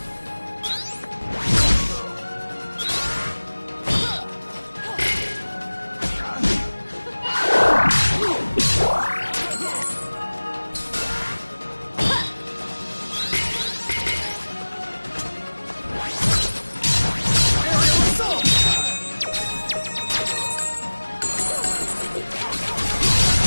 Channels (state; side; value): inverted; both; correlation -1.00